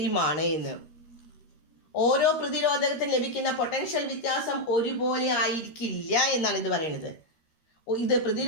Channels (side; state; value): right; late; 13 ms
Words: ആണ് എന്ന്. ഓരോ പ്രതിരോധകത്തിന് ലഭിക്കുന്ന പൊട്ടൻഷ്യൽ വ്യത്യാസം ഒരുപോലെ ആയിരിക്കില്ല എന്നാണ് ഇത് പറയുന്നത്. ഇത്